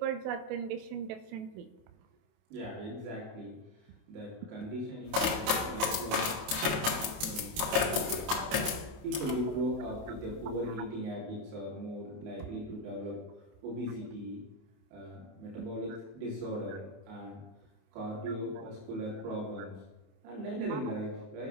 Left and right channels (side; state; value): left; late; 27 ms